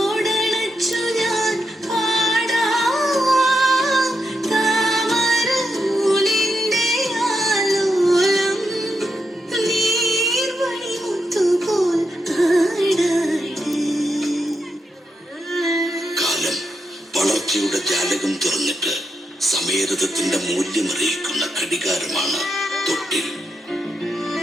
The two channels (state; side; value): normal; both; correlation 0.83